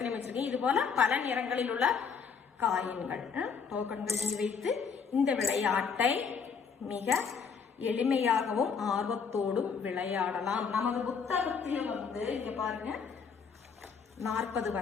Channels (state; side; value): quieter; right; 6.0 dB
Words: வச்சிருக்கீங்க. இது போல பல நிறங்களில் உள்ள காயின்கள், டோக்கன்கள் நீங்க வைத்து இந்த விளையாட்டை மிக எளிமையாகவும் ஆர்வத்தோடும் விளையாடலாம். நமது புத்தகத்தில் இங்க பாருங்க 40